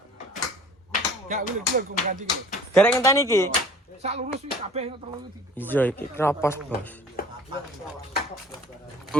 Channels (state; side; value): normal; both; correlation 0.49